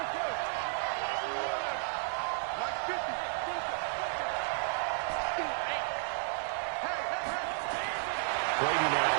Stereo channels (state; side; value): silent; left; 56 dB below the other